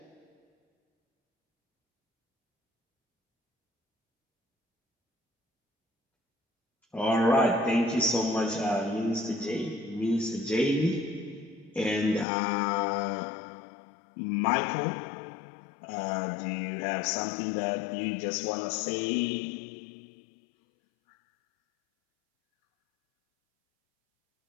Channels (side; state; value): right; drops out; at 12.2 s